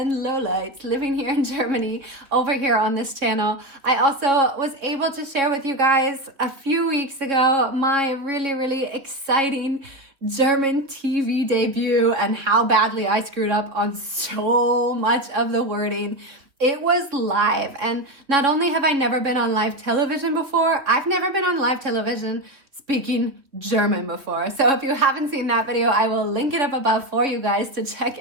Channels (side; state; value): left; late; 3.3 ms